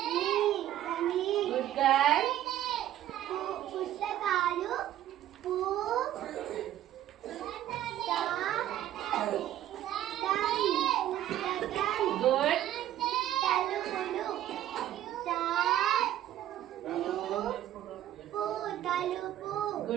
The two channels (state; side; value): quieter; left; 12.5 dB